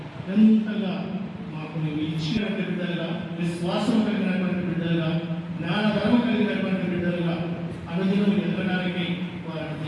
ఎంతగా మాకు నీవు ఇచ్చినటువంటి బిడ్డలుగా, విశ్వాసం కలిగినటువంటి బిడ్డలుగా, జ్ఞానధర్మ కలిగినటువంటి బిడ్డలుగా అనుదినం ఎదగడానికి వారిని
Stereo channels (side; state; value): both; identical; correlation 1.00